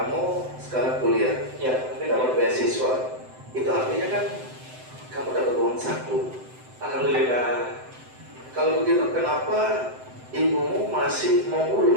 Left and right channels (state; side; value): late; left; 7.8 ms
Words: sekarang kuliah, Ya, mungkin dapat beasiswa. Itu artinya kan kamu dapat uang saku. Alhamdulillah. Kalau begitu, kenapa ibumu masih